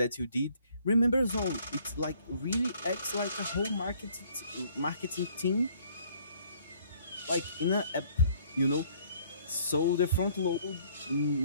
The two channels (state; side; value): inverted; both; correlation -0.61